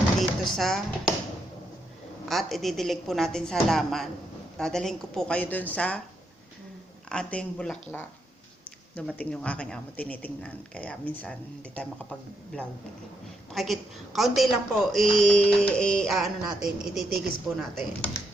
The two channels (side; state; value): both; normal; correlation 0.79